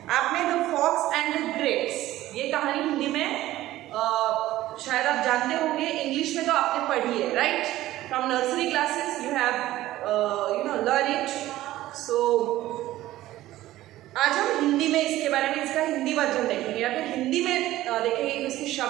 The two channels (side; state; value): left; quieter; 15.3 dB